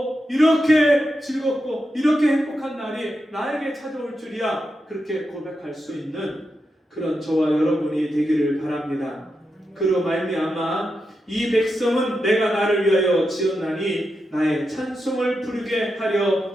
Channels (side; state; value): both; normal; correlation 0.87